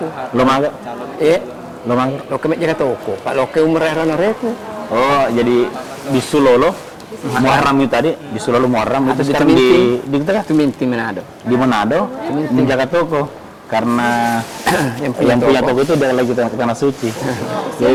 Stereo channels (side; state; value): both; identical; correlation 1.00